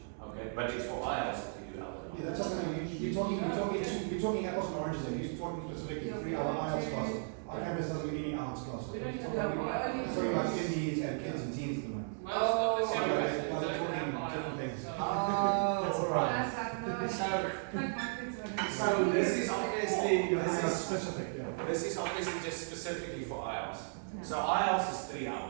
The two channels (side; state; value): left; silent; digital silence